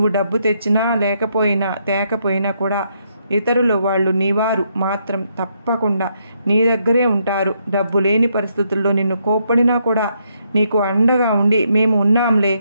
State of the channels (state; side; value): inverted; both; correlation -0.76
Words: డబ్బు తెచ్చినా తేకపోయినా కూడా ఇతరులు వాళ్ళు నీవారు మాత్రం తప్పకుండా నీ దగ్గరే ఉంటారు. డబ్బు లేని పరిస్థితుల్లో నిన్ను కోప్పడినా కూడా నీకు అండగా ఉండి మేము ఉన్నాంలే